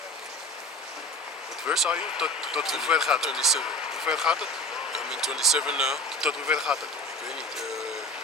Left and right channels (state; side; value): normal; both; correlation 0.37